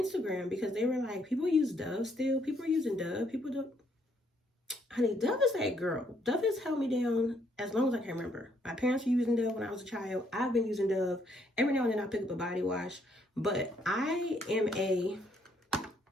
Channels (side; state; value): both; normal; correlation 0.70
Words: because they were like, people use Dove still. People are using Dove. People don't. Honey, Dove is that girl. Dove has held me down as long as I can remember. My parents were using Dove when I was a child. I've been using Dove. Every now and then I pick up a body wash. But I am a